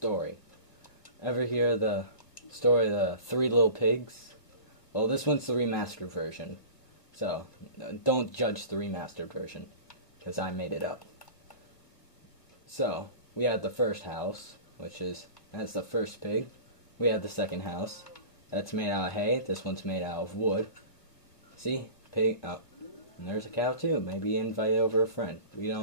Ever hear the story of the Three Little Pigs? Well, this one's the remastered version, so don't judge the remastered version, because I made it up. So, we had the first house, that's the first pig. We had the second house, that's made out of hay. This one's made out of wood. See? Pig, oh, and there's a cow too. Maybe invite over a friend. We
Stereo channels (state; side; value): late; right; 2.0 ms